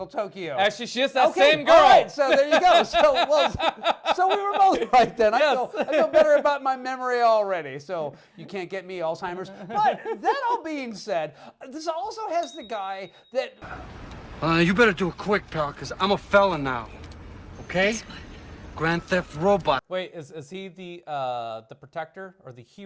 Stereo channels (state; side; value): identical; both; correlation 1.00